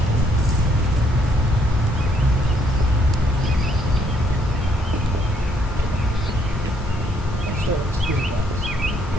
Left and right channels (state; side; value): normal; both; correlation 0.70